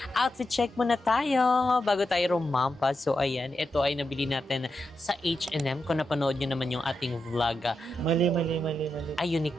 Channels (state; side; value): normal; both; correlation 0.87